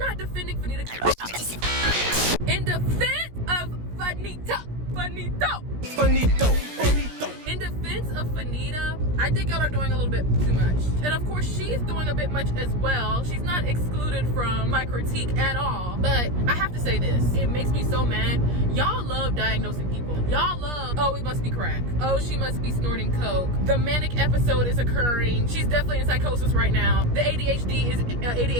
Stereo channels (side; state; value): left; late; 17 ms